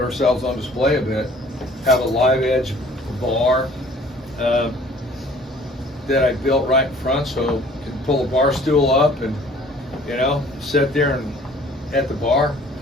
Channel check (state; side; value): normal; both; correlation 0.53